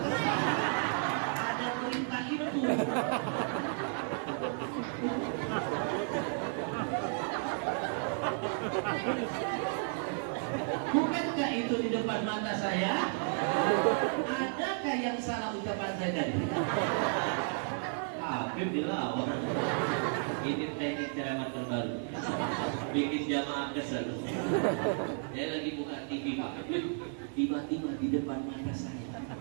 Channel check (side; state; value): left; silent; 56 dB below the other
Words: ada berita itu. Bukankah itu di depan mata saya? Adakah yang salah ucapan saya tadi? Habib dilawan. Ini teknik ceramah terbaru, bikin jamaah kesel. Saya lagi buka TV, Pak. Tiba-tiba di depan mata saya